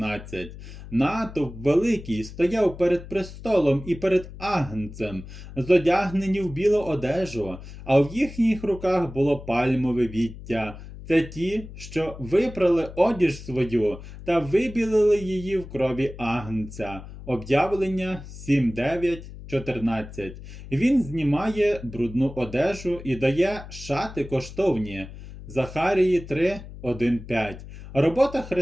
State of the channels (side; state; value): left; noise; hum, 14 dB below the sound